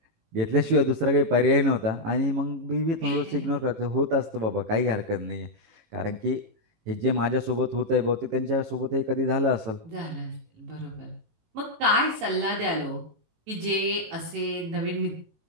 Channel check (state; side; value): late; left; 18 ms